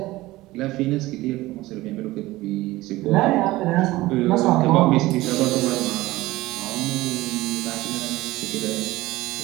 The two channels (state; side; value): quieter; left; 18.4 dB